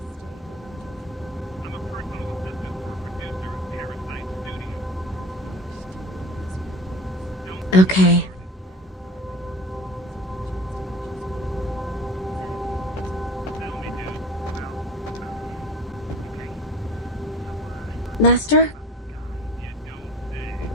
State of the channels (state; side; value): normal; both; correlation 0.39